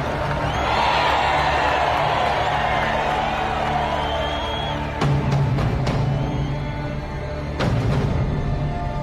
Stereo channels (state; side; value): identical; both; correlation 1.00